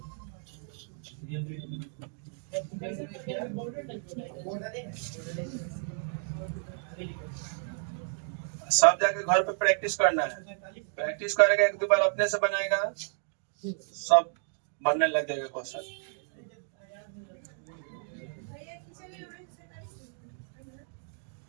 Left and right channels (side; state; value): left; silent; 56 dB below the other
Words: सब जाके घर पे प्रैक्टिस करना है। प्रैक्टिस करेगा एक दो बार अपने से बनाएगा सब बनने लग जाएगा क्वेश्चन।